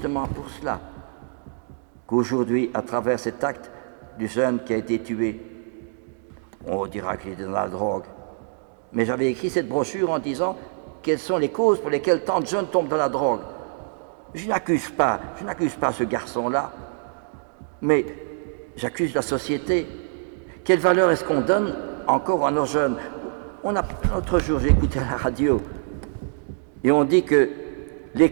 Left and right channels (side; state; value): left; silent; digital silence